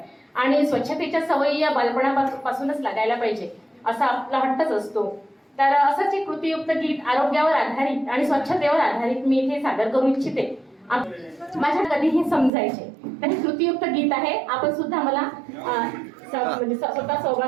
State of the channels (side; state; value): left; drops out; at 12.5 s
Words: आणि स्वच्छतेच्या सवयी या बालपणापासूनच लागायला पाहिजे असा आपला हट्टच असतो। तर असंच एक कृतीयुक्त गीत आरोग्यावर आधारित आणि स्वच्छतेवर आधारित मी इथे सादर करू इच्छिते। माझ्या कधीही समजायचे तर हे कृतीयुक्त गीत आहे। आपण सुद्धा मला म्हणजे स्वतः